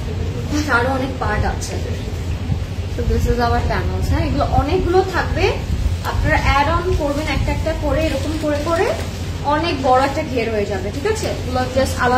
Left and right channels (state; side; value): identical; both; correlation 1.00